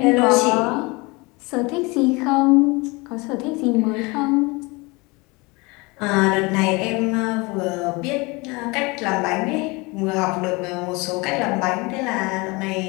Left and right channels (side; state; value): right; quieter; 25.9 dB